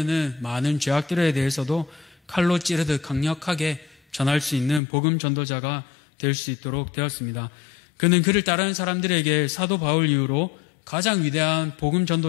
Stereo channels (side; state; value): right; drops out; at 4.8 s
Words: 많은 죄악들에 대해서도 칼로 찌르듯 강력하게 전할 수 있는 복음 전도자가 될 수 있도록 되었습니다. 그는 그를 따르는 사람들에게 사도 바울 이후로 가장 위대한 복음